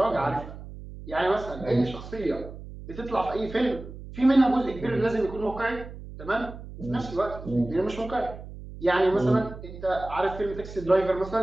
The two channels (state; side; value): noise; right; hum, 13 dB below the sound